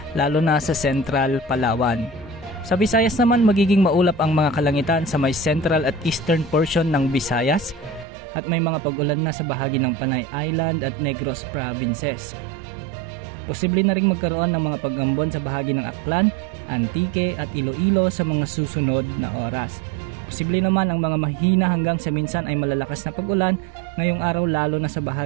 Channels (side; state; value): left; drops out; at 8.1 s